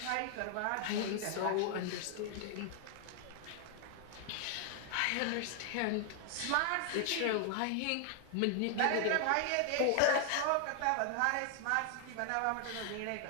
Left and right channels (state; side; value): different; both; correlation 0.00